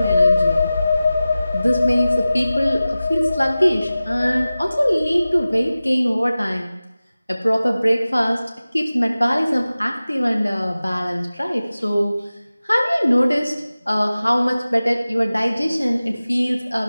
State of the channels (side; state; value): both; inverted; correlation -0.96